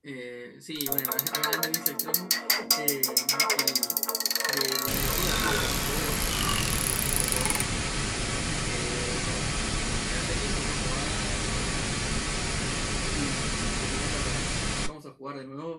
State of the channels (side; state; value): both; identical; correlation 1.00